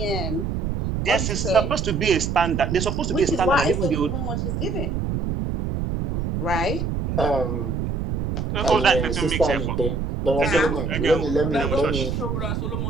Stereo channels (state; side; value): noise; right; rumble, 2 dB below the sound